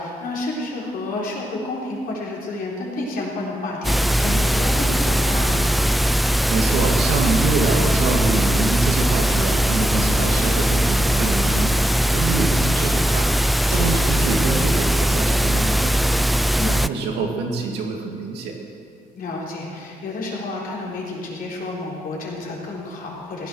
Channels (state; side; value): normal; both; correlation 0.87